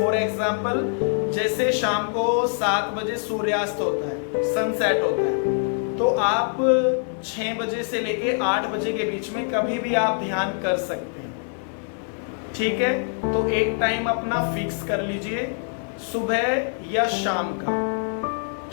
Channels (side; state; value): right; silent; 56 dB below the other